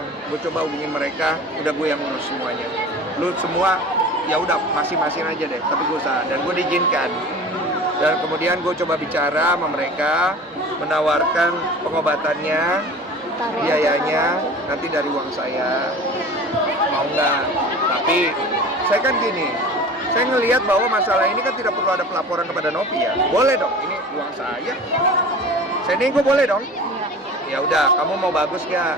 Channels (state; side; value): normal; both; correlation 0.39